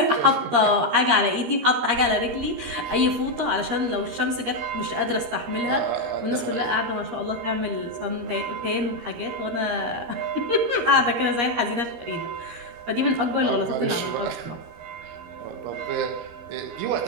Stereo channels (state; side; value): late; left; 13 ms